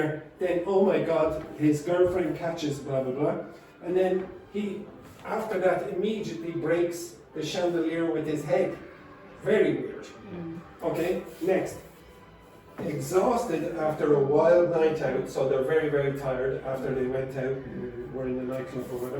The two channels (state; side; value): identical; both; correlation 1.00